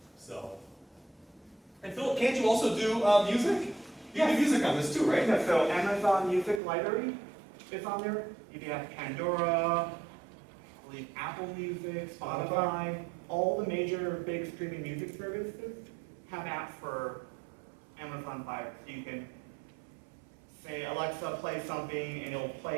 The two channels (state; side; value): drops out; left; at 6.6 s